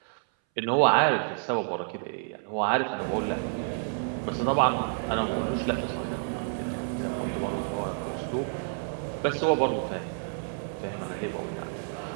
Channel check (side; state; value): left; silent; 59 dB below the other